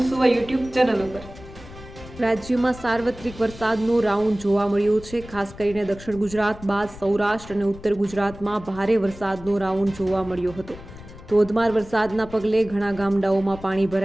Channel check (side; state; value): left; noise; rumble, 16 dB below the sound